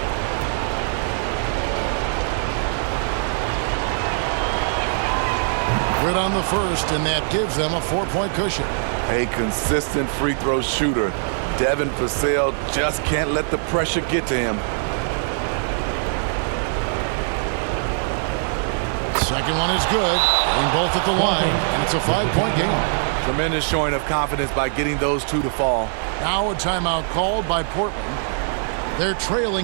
Good on the first, and that gives them a 4-point cushion. A consistent free throw shooter. Devin Vassell just can't let the pressure get to him. Second one is good, getting both at the line, and it's a 5-point game. Tremendous showing of confidence by getting those 2 to fall. Now a timeout called by Portland. They're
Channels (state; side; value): silent; left; digital silence